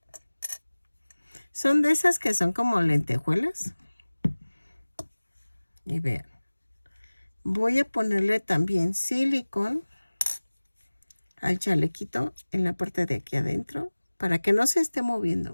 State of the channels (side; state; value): both; inverted; correlation -1.00